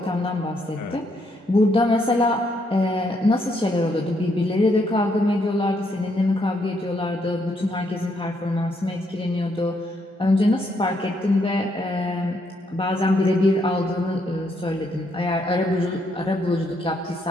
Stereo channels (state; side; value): normal; both; correlation 0.74